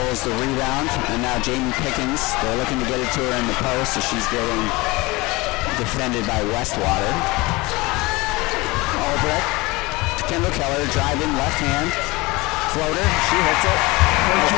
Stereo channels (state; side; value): quieter; right; 22.9 dB